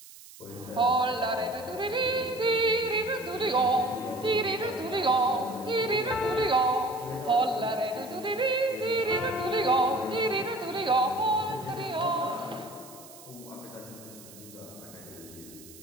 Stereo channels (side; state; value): right; noise; hiss, 19 dB below the sound